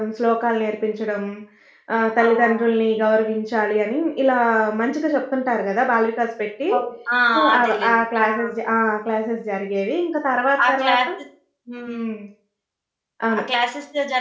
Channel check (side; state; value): both; identical; correlation 1.00